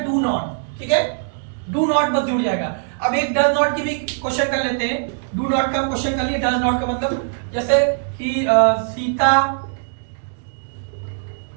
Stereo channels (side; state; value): left; silent; 65 dB below the other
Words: नॉट। ठीक है, डू नॉट बस जुड़ जाएगा। अब एक डज नॉट की भी क्वेश्चन कर लेते हैं। डू नॉट का क्वेश्चन कर लिए, डज नॉट का मतलब जैसे कि सीता